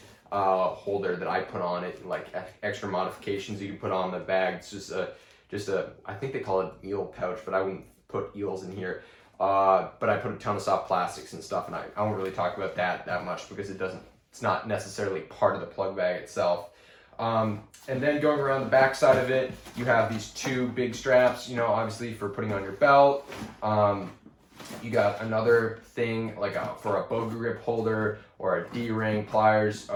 holder that I put on it, like extra modifications you can put on the bag. It's just a I think they call it eel pouch, but I wouldn't put eels in here. but I put a ton of soft plastics and stuff, and I won't really talk about that much because it's not necessarily part of the plug bag itself. And then going around the back side of it, you have these two big straps, obviously for putting on your belt. You got another thing like for a bow grip holder or a D-ring, pliers,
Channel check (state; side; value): identical; both; correlation 1.00